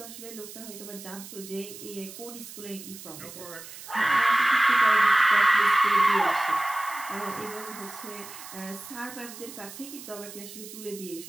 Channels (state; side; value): noise; right; hiss, 14 dB below the sound